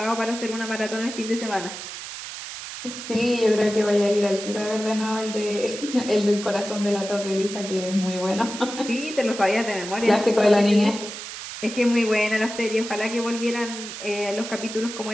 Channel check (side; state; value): right; noise; hiss, 9 dB below the sound